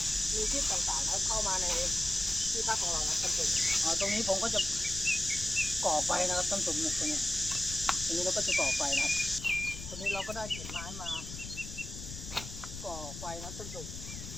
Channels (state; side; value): noise; left; rumble, 10 dB below the sound